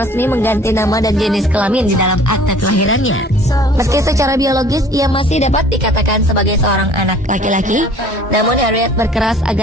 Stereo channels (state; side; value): normal; both; correlation 0.51